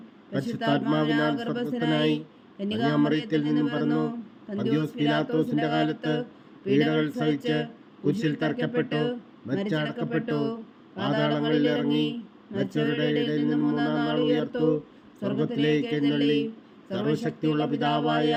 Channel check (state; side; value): identical; both; correlation 1.00